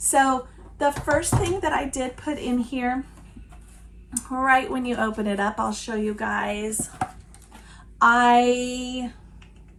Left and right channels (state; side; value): identical; both; correlation 1.00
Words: the first thing that I did put in here, right when you open it up, I'll show you guys. I